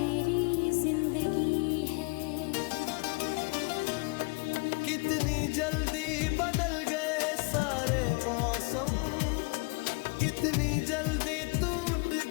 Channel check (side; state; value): right; quieter; 30.2 dB